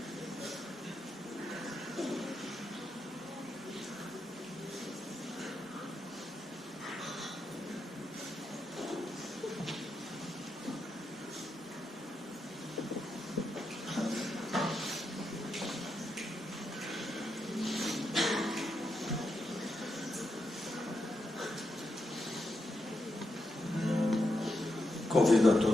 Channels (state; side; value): normal; both; correlation 0.84